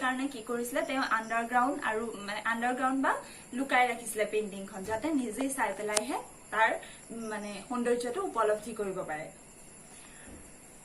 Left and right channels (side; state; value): both; identical; correlation 1.00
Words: কাৰণে কি কৰিছিলে, তেওঁ আণ্ডাৰগ্ৰাউণ্ড বা লুকাই ৰাখিছিলে পেইন্টিংখন, যাতে নিজে চাই পেলাইহে তাৰ মানে সৌন্দৰ্যটো উপলব্ধি কৰিব পাৰে।